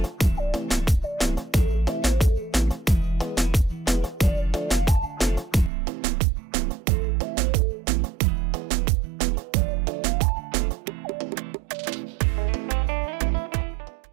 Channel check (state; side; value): drops out; left; at 5.7 s